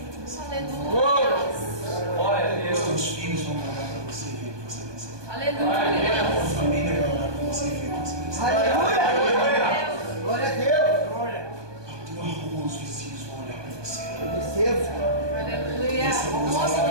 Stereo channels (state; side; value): late; left; 1.2 ms